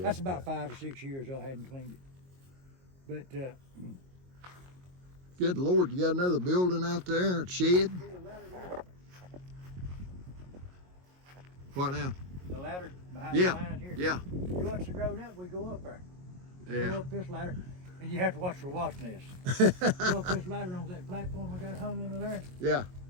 That's about 5 or 6 years I hadn't cleaned it. But Good Lord, you got another building out there, a shed? What now? the ladder behind Yeah. the line here. Yeah. Once it grown up, we go up there. Go Yeah. up this ladder, and you have to watch for wasp nests. Go up this ladder on that platform I got hung under there, Yeah.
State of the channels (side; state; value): left; late; 22 ms